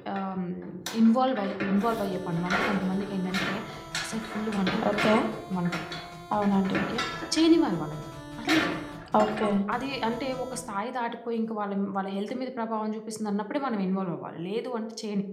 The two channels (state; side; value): identical; both; correlation 1.00